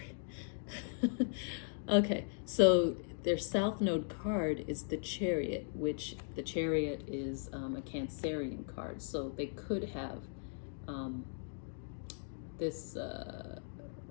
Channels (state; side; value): silent; right; digital silence